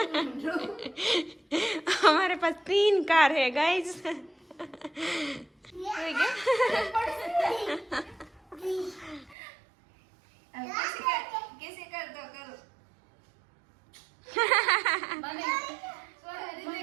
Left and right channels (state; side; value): drops out; left; at 9.3 s